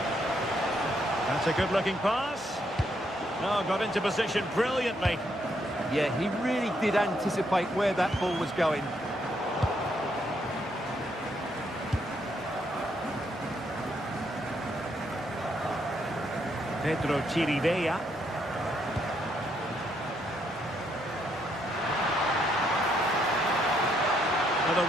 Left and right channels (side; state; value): both; normal; correlation 0.74